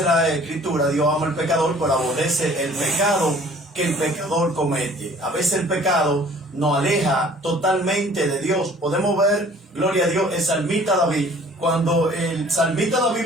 la Escritura, Dios ama al pecador, pero aborrece el pecado que el pecador comete. A veces el pecado nos aleja totalmente de Dios. Podemos ver, gloria a Dios, el salmista David. Cuando el salmista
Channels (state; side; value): normal; both; correlation 0.52